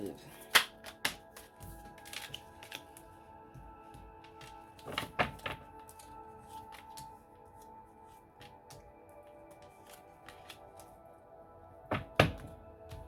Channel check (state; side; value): identical; both; correlation 1.00